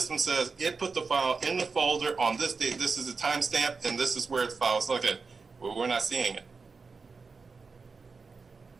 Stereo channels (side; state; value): left; quieter; 4.6 dB